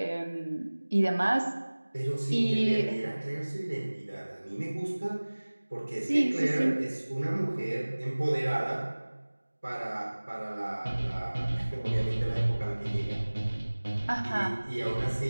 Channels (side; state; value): both; inverted; correlation -1.00